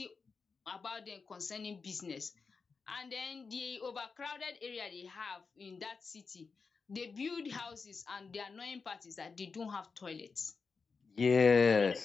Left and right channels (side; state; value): right; quieter; 4.9 dB